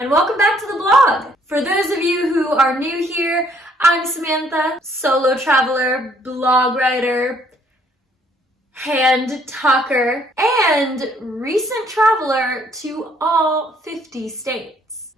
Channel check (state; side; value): normal; both; correlation 0.65